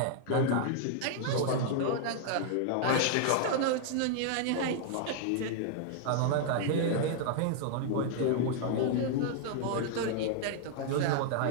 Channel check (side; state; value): both; different; correlation -0.01